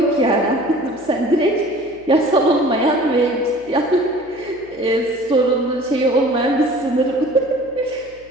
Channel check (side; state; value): left; noise; hum, 27 dB below the sound